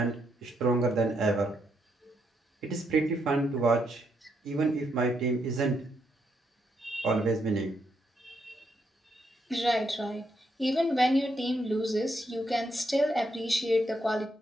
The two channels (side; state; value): both; normal; correlation 0.78